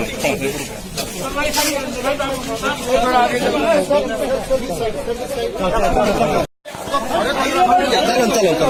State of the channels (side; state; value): both; identical; correlation 1.00